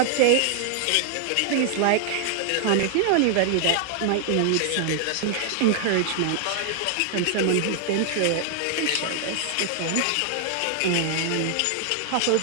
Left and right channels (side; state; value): both; different; correlation 0.00